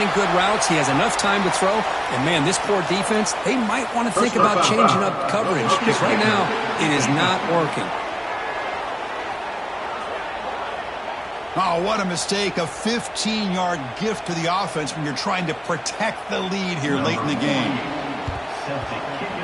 good routes. He has enough time to throw. And, man, this poor defense, they might want to think about changing up coverage because right now it is not working. Oh, what a mistake. A 15-yard gift to the offense when you're trying to protect the lead here late in the game.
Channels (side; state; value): both; identical; correlation 1.00